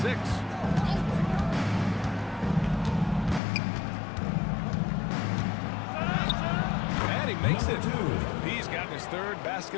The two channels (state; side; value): drops out; right; at 3.4 s